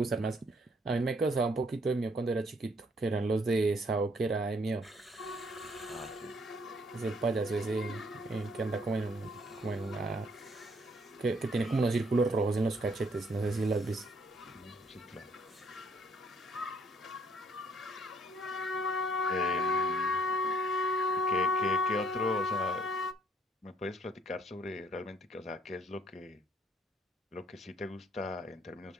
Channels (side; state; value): both; normal; correlation 0.65